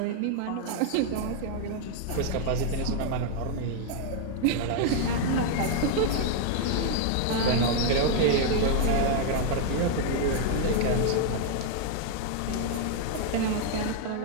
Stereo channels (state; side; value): different; both; correlation 0.00